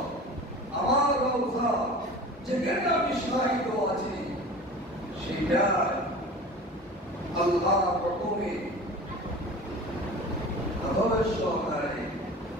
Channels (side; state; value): both; normal; correlation 0.38